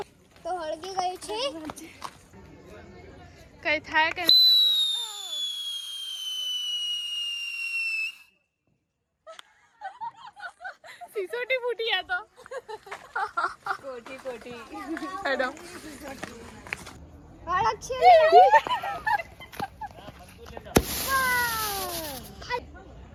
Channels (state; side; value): identical; both; correlation 1.00